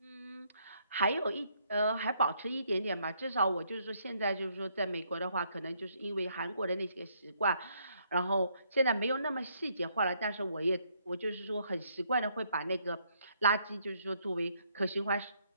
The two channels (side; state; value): both; inverted; correlation -0.71